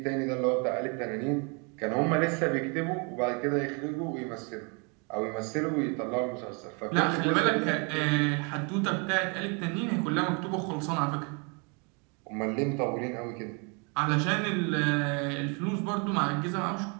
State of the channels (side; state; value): left; quieter; 34.1 dB